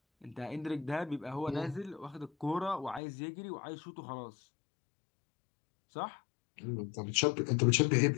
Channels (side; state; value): right; drops out; at 3.0 s